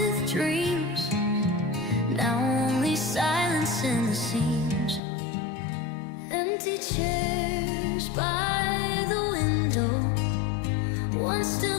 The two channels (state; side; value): drops out; right; at 5.0 s